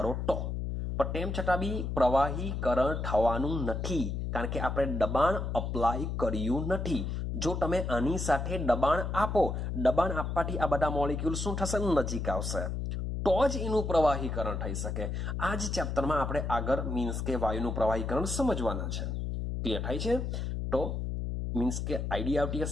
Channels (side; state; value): left; noise; hum, 2 dB below the sound